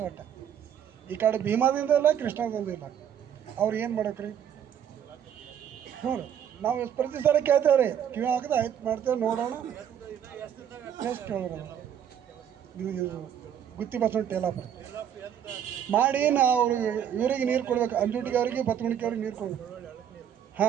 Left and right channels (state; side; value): quieter; left; 9.1 dB